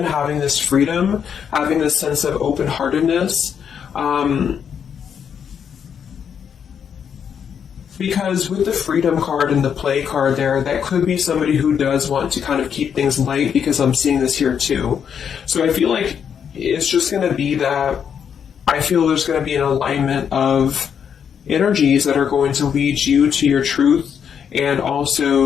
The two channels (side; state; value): right; quieter; 7.7 dB